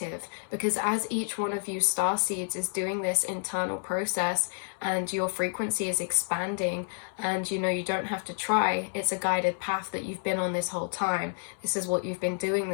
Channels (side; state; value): right; silent; 58 dB below the other